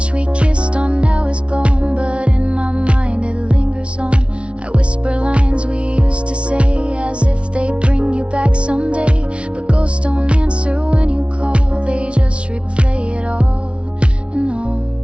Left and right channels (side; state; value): left; late; 0.060 ms